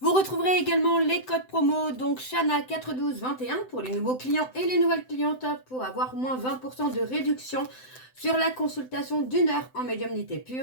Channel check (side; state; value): right; late; 7.8 ms